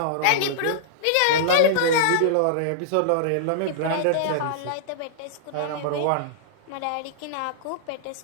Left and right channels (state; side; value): different; both; correlation -0.02